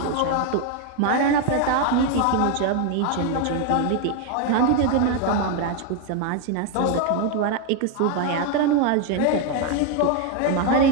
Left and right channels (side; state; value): both; different; correlation 0.01